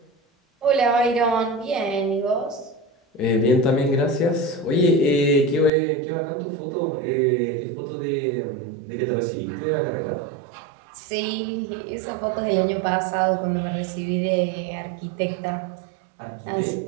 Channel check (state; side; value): drops out; left; at 5.7 s